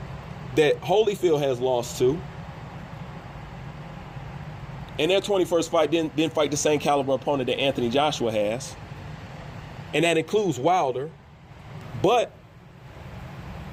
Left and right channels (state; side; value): identical; both; correlation 1.00